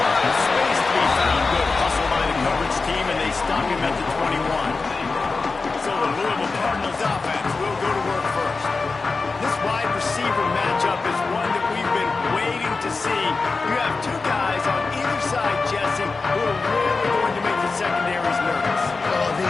of space to be found. Good hustle by the coverage team, and they stop him at the 21. So the Louisville Cardinals offense will go to work first. This wide receiver matchup is one that we've been waiting to see. You have two guys on either side, Jesse, who are really going to make the secondaries nervous. Well,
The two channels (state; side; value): quieter; right; 4.1 dB